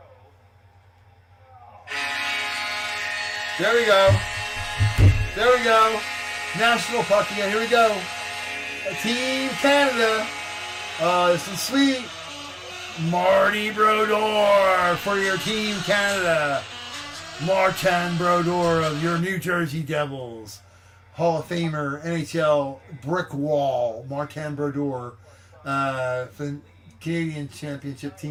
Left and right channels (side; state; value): both; identical; correlation 1.00